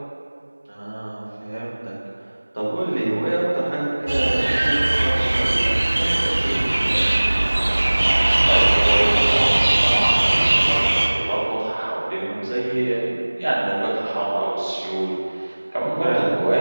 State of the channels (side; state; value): both; inverted; correlation -1.00